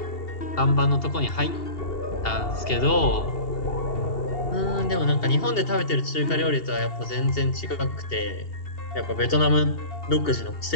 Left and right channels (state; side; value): late; right; 2.7 ms